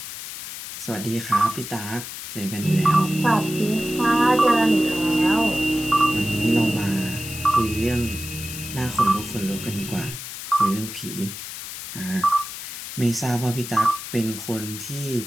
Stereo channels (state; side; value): noise; left; hiss, 9 dB below the sound